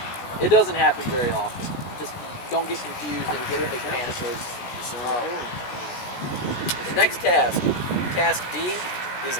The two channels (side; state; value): right; late; 16 ms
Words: It doesn't happen very often. Just don't get confused and get a big panic. The next task, task D, is